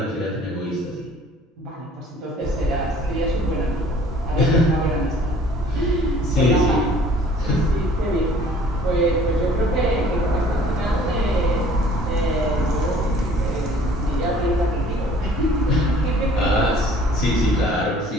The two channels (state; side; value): normal; both; correlation 0.54